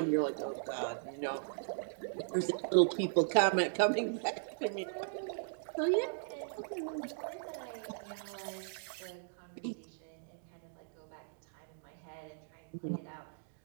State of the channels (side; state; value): left; silent; digital silence